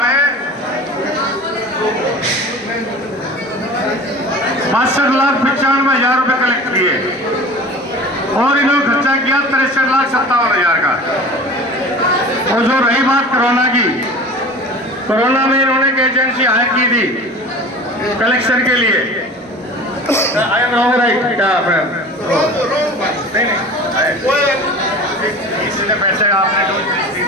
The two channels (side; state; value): both; normal; correlation 0.38